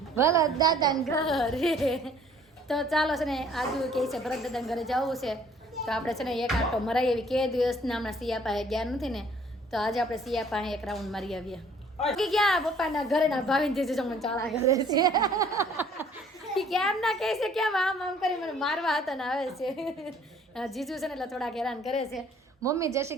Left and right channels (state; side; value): normal; both; correlation 0.57